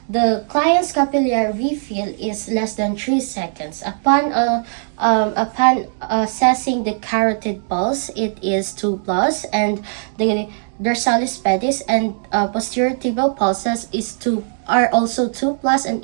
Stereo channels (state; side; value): silent; left; digital silence